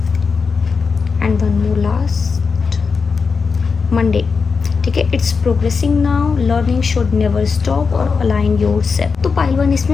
and one more last Monday. ठीक है, it's progressing now, learning should never stop और अलाइन योर सेल्फ। तो पाइलवान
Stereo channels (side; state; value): right; quieter; 5.1 dB